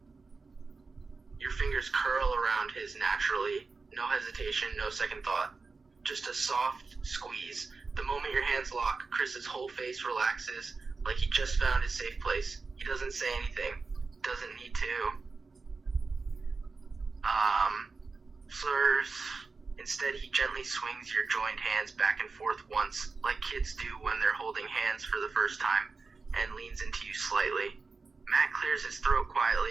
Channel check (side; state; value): left; quieter; 4.2 dB